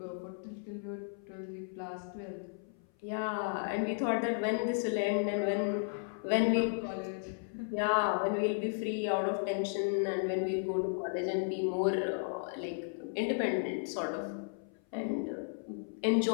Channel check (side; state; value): right; silent; 55 dB below the other